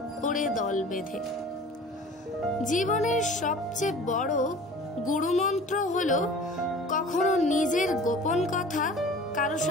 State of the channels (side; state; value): both; normal; correlation 0.43